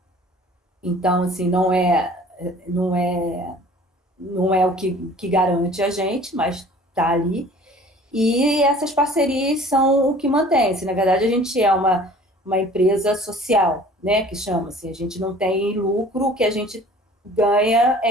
então assim, não é o que garante a gente, mas está ali. E essas parcerias são o que mantém. Assim, na verdade, a gente é uma empresa social, né, que chama-se. A gente não tem lucro, o que a gente ganha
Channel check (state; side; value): normal; both; correlation 0.49